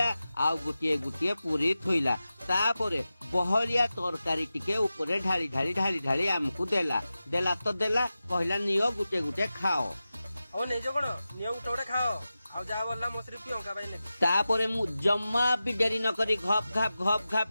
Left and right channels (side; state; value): both; inverted; correlation -0.94